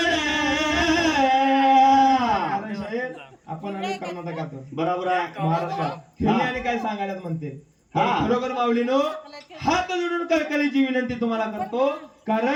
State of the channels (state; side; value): identical; both; correlation 1.00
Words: कारण शाहीर आपण आणि कर्नाटकात, बरोबर आहे. महाराष्ट्रात खेळणे आणि काय सांगायला म्हणते. हा. खरोखर माऊलीनो, हात जोडून कळकळीची विनंती तुम्हाला करतो.